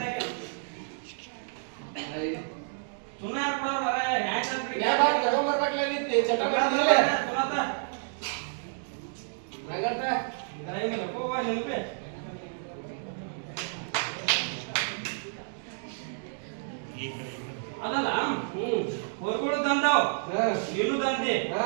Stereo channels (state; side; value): silent; left; digital silence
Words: ಸುಮ್ಮನೆ ಯಾರು ಕೊಡೋರು ಮರ ಹ್ಯಾಂಗ್ ಅಂತ ಯಾ ಬಾ ತಗೊಂಬರ್ಬೇಕಲ್ಲ ನಿಂತಿ ಚಟ ಮಾಡಿದಿಲ್ಲ ಸುನಾತ ನಗಂತ ಡ್ರೈವಿಂಗ್ ಹೋಗುವ ನೆನಪೆ ಅದಲ್ಲ ಹೊರಗಡೆ ತಂದಾವ್ ನೀನು ತಂದಿ